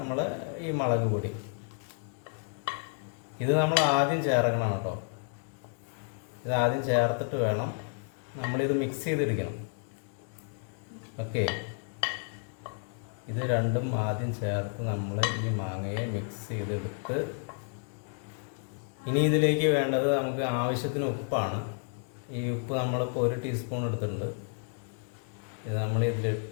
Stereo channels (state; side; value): silent; right; 57 dB below the other